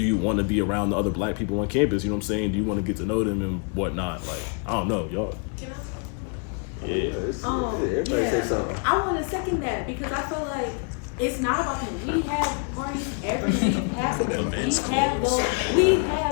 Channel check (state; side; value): quieter; right; 39.7 dB